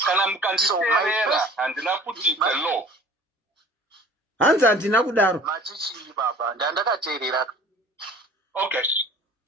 Kana mukanditeerera handina kuti it's a law. Hanzi handina kudaro. Machichi baba, ndandakateerera. Okay.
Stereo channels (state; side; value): normal; both; correlation 0.47